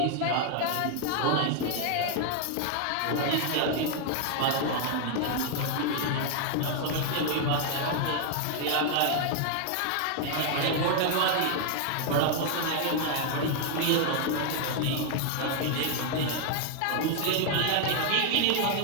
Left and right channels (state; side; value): different; both; correlation 0.00